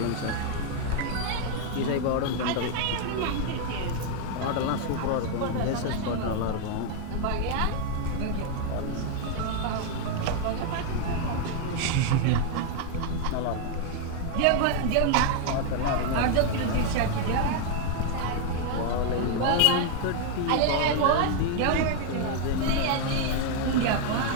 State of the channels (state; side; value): different; both; correlation 0.00